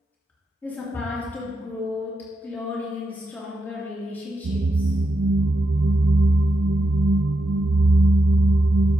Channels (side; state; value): both; normal; correlation 0.86